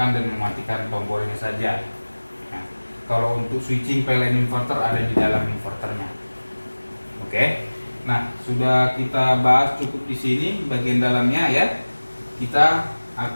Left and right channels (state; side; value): inverted; both; correlation -1.00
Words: dan mematikan tombol ini saja. Nah, kalau untuk switching PLN inverter ada di dalam inverternya. Oke. Nah, sudah kita bahas cukup di sini bagian dalamnya ya. Kita